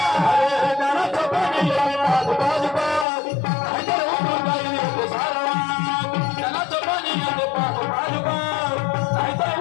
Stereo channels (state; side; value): drops out; right; at 3.1 s